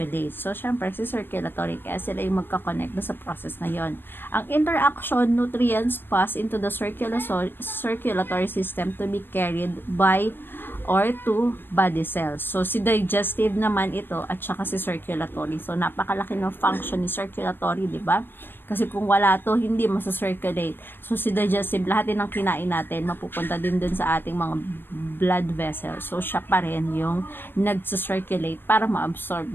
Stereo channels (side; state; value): right; late; 0.10 ms